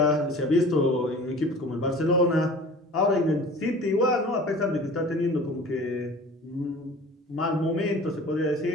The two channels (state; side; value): normal; both; correlation 0.43